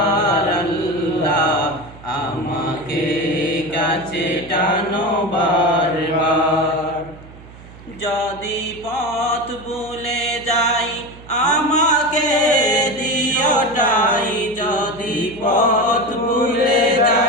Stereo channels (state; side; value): noise; right; hum, 19 dB below the sound